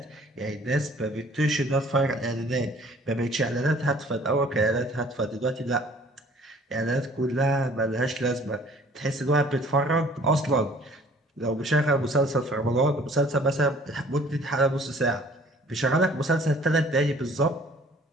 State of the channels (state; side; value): normal; both; correlation 0.54